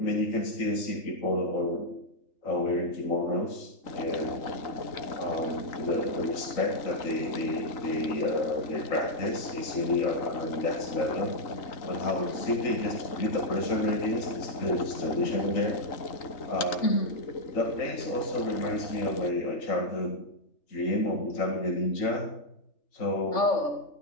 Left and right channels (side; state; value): right; late; 3.8 ms